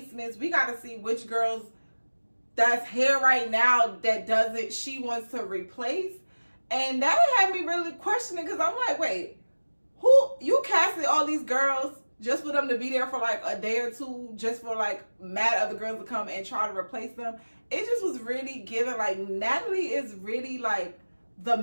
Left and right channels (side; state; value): both; inverted; correlation -1.00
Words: we got to see which girls that's here right now that doesn't, she wants to replace. And that had me really questioning, because I'm like, wait, who, you casted all these girls just for them to be there for like a day or two, just for like mad other girls to come and try to replace them? It just was really given, like, Natalie is really like the